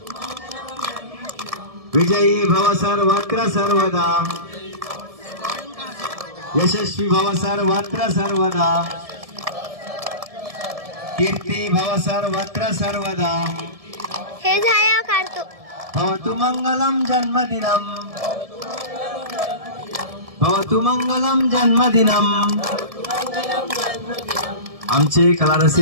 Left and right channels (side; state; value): left; late; 1.7 ms